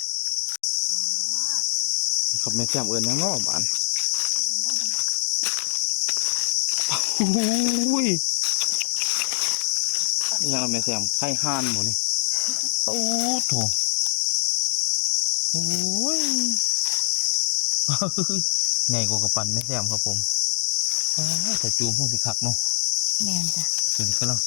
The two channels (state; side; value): silent; right; digital silence